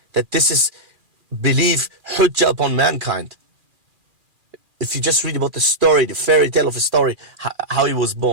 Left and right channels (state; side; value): late; left; 2.4 ms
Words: that this is belief hujjah upon mankind. If you just read about the story, the fairy tale of a story, how he was